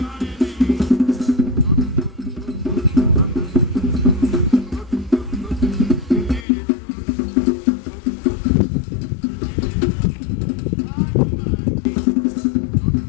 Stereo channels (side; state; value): right; drops out; at 6.5 s